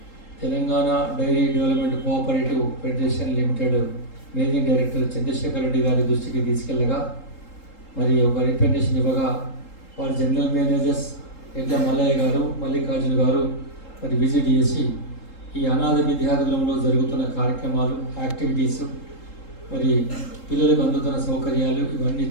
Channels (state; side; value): late; right; 3.8 ms